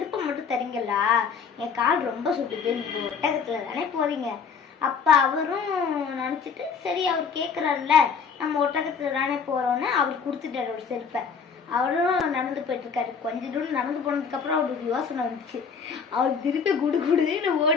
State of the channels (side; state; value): right; quieter; 6.0 dB